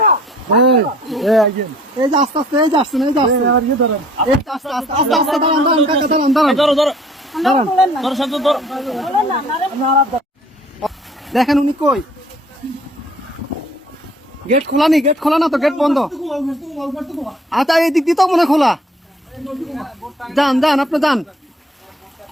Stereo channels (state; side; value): normal; both; correlation 0.55